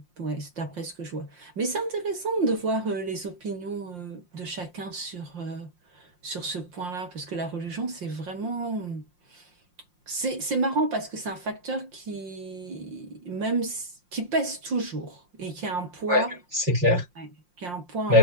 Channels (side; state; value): left; late; 5.7 ms